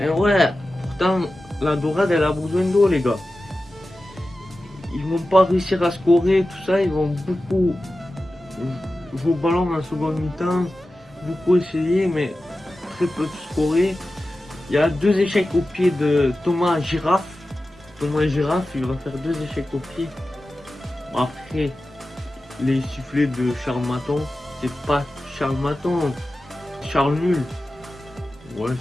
ouais, pourtant, la dorade, elle a besoin d'eau, les gars. Ils vont pas réussir à scorer, tout ça. Ils vont beaucoup jouer au ballon en seconde mi-temps, beaucoup essayer, mais très peu de scorer. Il y a 2 échecs au pied de Thomas Girafe. Thomas Girafe, il va faire 2 échecs au pied. Après, les sifflets de Charles Maton, c'est pas Charles Maton, Charles Nul. Ouais,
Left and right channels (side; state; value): both; normal; correlation 0.94